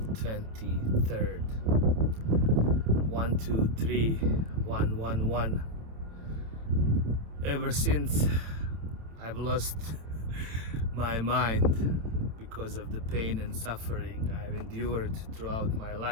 23rd. 123-111. Ever since I've lost my mind because of the pain and suffering I've endured throughout my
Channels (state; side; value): late; left; 27 ms